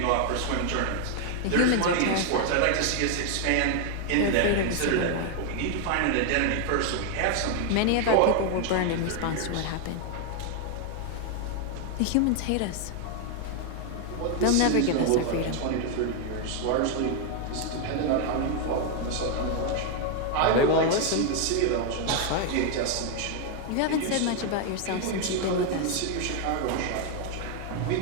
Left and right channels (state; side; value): different; both; correlation 0.00